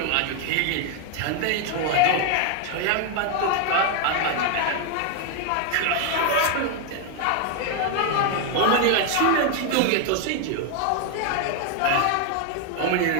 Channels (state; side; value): different; both; correlation 0.01